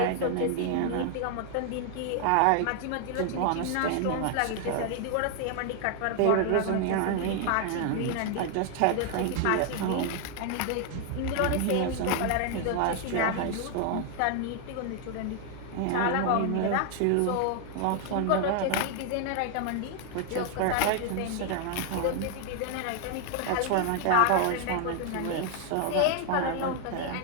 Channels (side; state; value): both; different; correlation 0.00